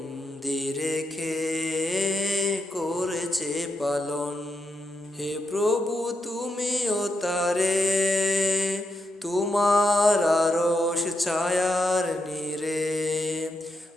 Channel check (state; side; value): normal; both; correlation 0.84